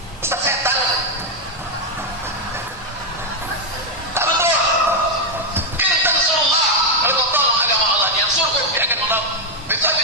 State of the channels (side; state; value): both; normal; correlation 0.01